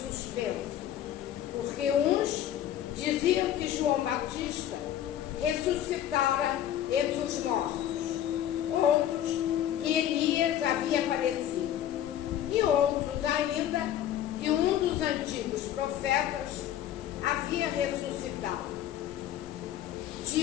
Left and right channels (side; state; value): right; quieter; 11.2 dB